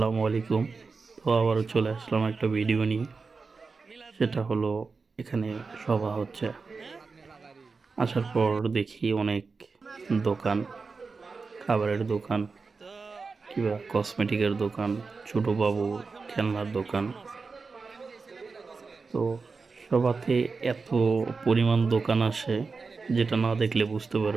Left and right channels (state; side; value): quieter; left; 4.5 dB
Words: আলাইকুম। তো আবারও চলে আসলাম একটা ভিডিও নিয়ে। সেটা হলো এখানে সভা হচ্ছে। আসার পর দেখি অনেক দোকান, খাবারের দোকান কিংবা কসমেটিকের দোকান, ছোট বাবু খেলনার দোকান। তো সভাতে এত পরিমাণ দোকান আসে যেটা না দেখলে বুঝতে